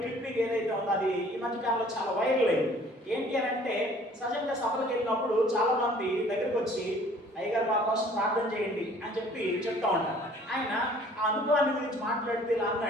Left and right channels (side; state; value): both; normal; correlation 0.54